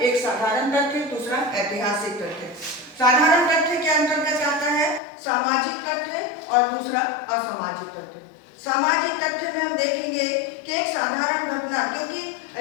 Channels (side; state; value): right; drops out; at 5.0 s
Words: साधारण तथ्य, दूसरा ऐतिहासिक तथ्य। साधारण तथ्य के अंतर्गत आता है सामाजिक तथ्य और दूसरा असामाजिक तथ्य। सामाजिक तथ्य में हम देखेंगे कि एक साधारण घटना, क्योंकि